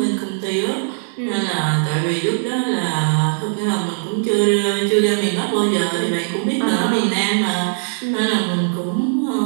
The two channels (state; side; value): silent; left; digital silence